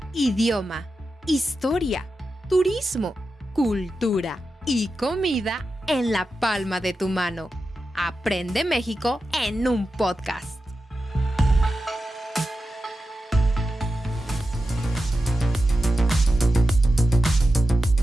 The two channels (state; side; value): normal; both; correlation 0.91